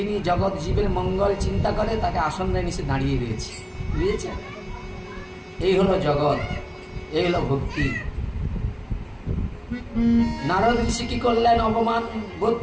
জগৎ জীবের মঙ্গল চিন্তা করে, তাকে আসন নিচে দাঁড়িয়ে রয়েছে, বুঝেছেন? এই হলো জগৎ, এই হলো ভক্তি। নারদ ঋষি কি করলেন, অপমান বোধ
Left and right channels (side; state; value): both; identical; correlation 1.00